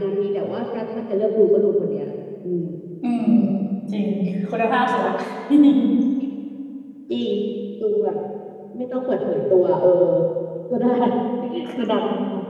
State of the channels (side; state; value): both; identical; correlation 1.00